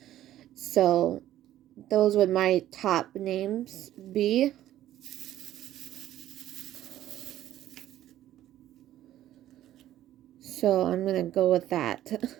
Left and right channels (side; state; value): left; quieter; 13.1 dB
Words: So those would my top names be. So I'm gonna go with that.